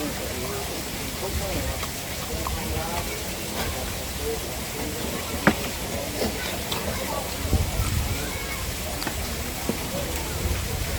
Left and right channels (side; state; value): both; identical; correlation 1.00